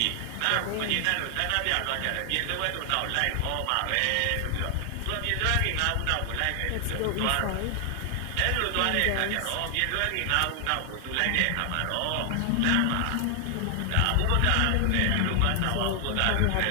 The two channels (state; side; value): different; both; correlation 0.00